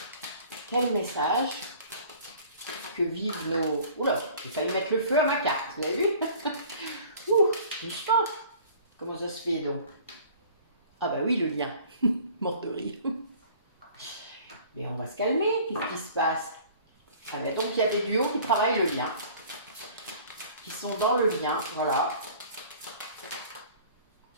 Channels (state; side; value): inverted; both; correlation -0.48